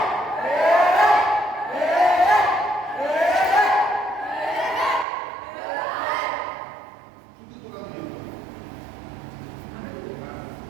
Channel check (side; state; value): left; drops out; at 5.1 s